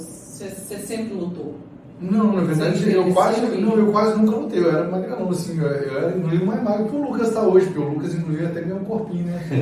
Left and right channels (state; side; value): identical; both; correlation 1.00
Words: sempre lutou? Não, na verdade, eu quase nunca lutei. Eu era magrão, assim, eu era inclusive mais magro que o Lucas está hoje, porque o Lucas, inclusive, até ganhou um corpinho, né?